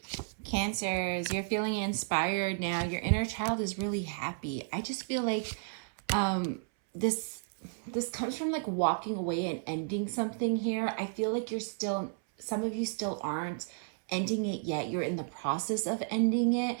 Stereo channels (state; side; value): silent; left; 56 dB below the other